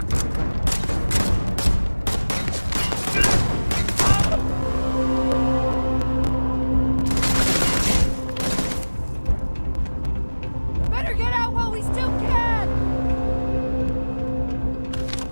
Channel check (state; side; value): inverted; both; correlation -1.00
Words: Better get out while we still can!